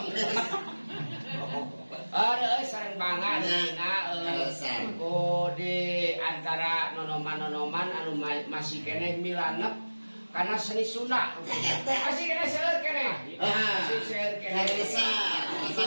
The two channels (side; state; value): both; inverted; correlation -1.00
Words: Reus sareng banget dina di antara nonoman-nonoman anu masih keneh milanep karena seni Sunda. Masih keneh seueur keneh. Masih seueur keneh.